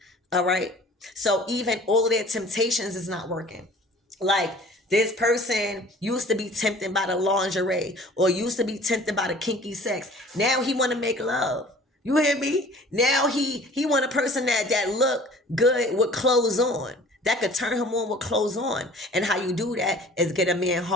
All right. So even all of their temptations is not working. Like, this person used to be tempted by the lingerie or used to be tempted by the kinky sex. Now he want to make love. You hear me? Now he want a person that look good with clothes on, that could turn him on with clothes on. And how you do that is get a man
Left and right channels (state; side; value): normal; both; correlation 0.48